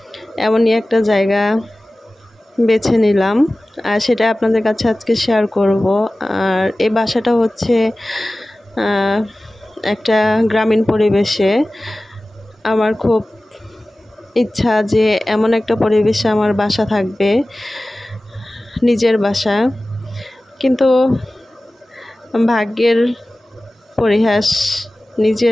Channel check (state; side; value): normal; both; correlation 0.97